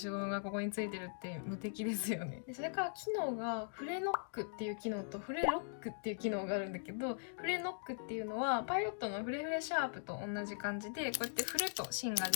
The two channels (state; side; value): silent; right; digital silence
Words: ゴムがここについてるって無敵ですよね。でそれから機能がフレノックっていう機能とフレロックっていう機能があるんだけど、フレノックっていうのはパイロットのフレフレシャープと同じ感じでこうやって振ると芯が